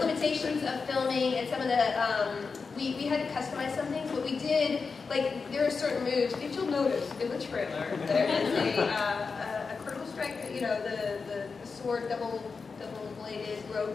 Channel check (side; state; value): right; quieter; 4.8 dB